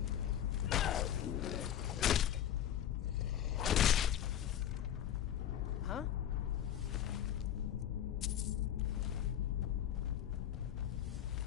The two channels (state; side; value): quieter; right; 10.5 dB